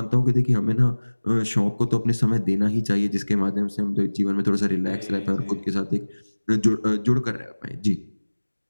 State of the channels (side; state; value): both; inverted; correlation -1.00